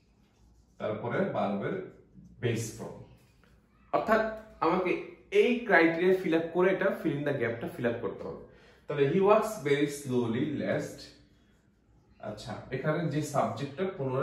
তারপরে ভার্বের বেস ফর্ম। অর্থাৎ আমাকে এই ক্রাইটেরিয়া ফিল আপ করে এটা ফিল ইন দ্য গ্যাপটা ফিল আপ করতে হবে। তাহলে হি ওয়াক্স ভেরি স্লোলি লেস্ট। আচ্ছা, এখানে যে সাবজেক্টটা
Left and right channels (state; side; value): identical; both; correlation 1.00